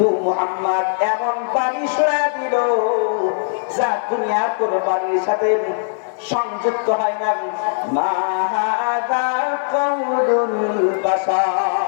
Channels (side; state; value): right; silent; 66 dB below the other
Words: মুহাম্মদ এমন বাণী শোনা দিল যা দুনিয়ার কোন বাণীর সাথে সংযুক্ত হয় না। মা হাযা কাউলুল